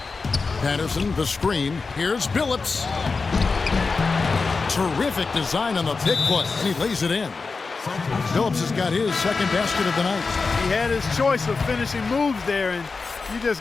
Patterson, the screen. Here's Billups. Terrific design on the pick play. And he lays it in. Billups has got his second basket of the night. He had his choice of finishing moves there, and you just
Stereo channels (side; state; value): right; quieter; 4.4 dB